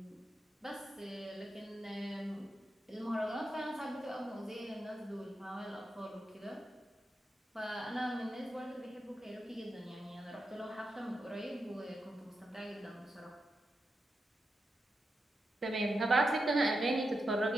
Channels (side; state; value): both; normal; correlation 0.87